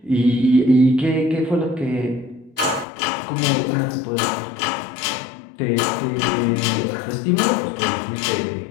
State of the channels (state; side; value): drops out; right; at 2.9 s